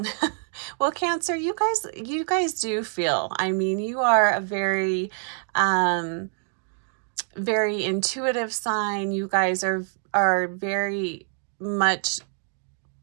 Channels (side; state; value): left; silent; 61 dB below the other